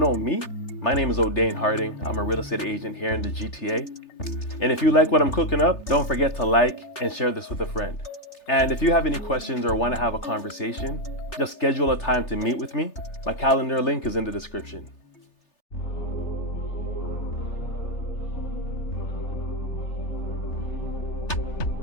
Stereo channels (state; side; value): late; right; 3.3 ms